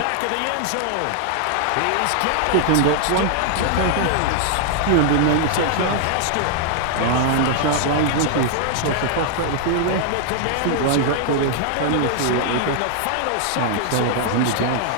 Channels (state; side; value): different; both; correlation 0.00